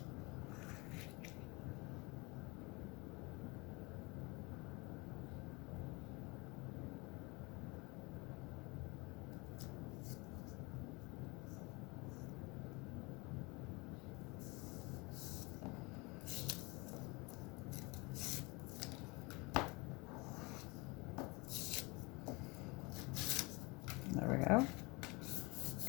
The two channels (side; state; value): right; quieter; 26.6 dB